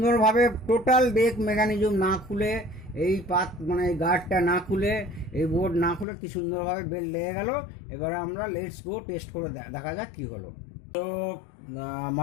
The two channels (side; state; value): right; drops out; at 6.1 s